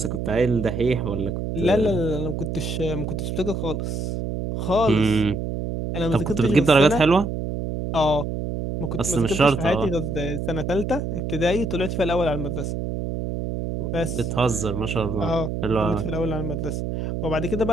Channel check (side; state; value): right; noise; hum, 3 dB below the sound